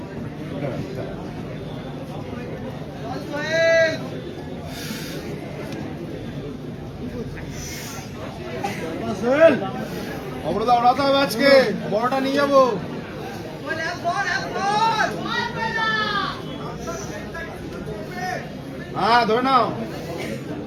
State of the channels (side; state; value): both; identical; correlation 1.00